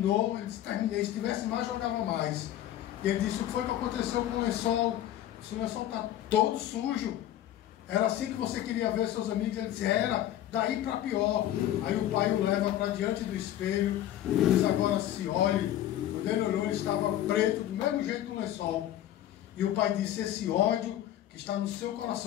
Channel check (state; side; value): quieter; right; 12.4 dB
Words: Ele disse: terminei, se tivesse mais, jogava mais. E ele disse: o que foi que aconteceu com o lençol? O lençol está todo sujo. Era assim que você queria ver seus amigos? Ele disse: era, daí para pior. Aí o pai o leva para diante do espelho e diz: agora se olhe. Quando ele olhou, ele estava preto, do mesmo jeito do lençol. E o pai disse: esse ódio que está no seu